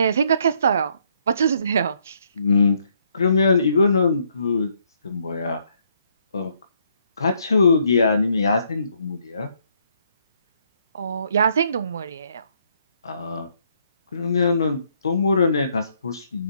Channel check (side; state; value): both; inverted; correlation -0.71